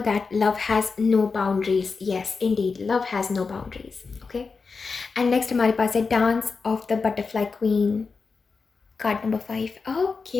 that love has no boundaries. Yes indeed, love has no boundaries. Okay, and next हमारे पास है dance of the butterfly queen, card number 5.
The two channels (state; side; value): quieter; right; 4.7 dB